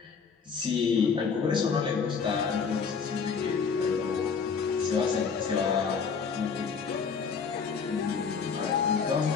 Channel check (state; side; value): quieter; right; 5.8 dB